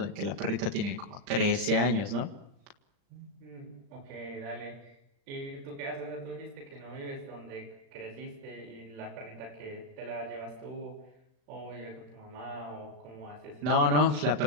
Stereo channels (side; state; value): left; late; 39 ms